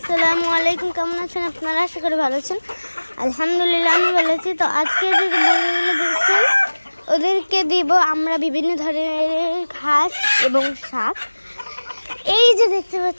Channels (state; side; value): inverted; both; correlation -1.00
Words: আলাইকুম। কেমন আছেন আপনারা? আশা করি ভালো আছেন। আলহামদুলিল্লাহ আমি ভালো আছি। তো আজকে যে মুরগিগুলো দেখছেন ওদেরকে দিব আমরা বিভিন্ন ধরনের ঘাস এবং শাক। এই যে দেখতে